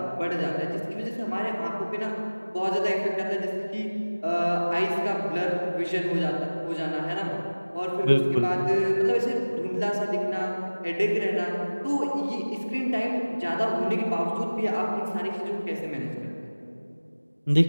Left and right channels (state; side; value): inverted; both; correlation -1.00